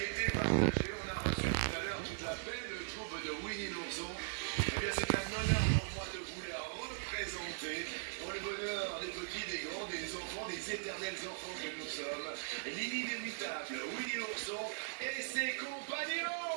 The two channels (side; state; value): left; silent; 51 dB below the other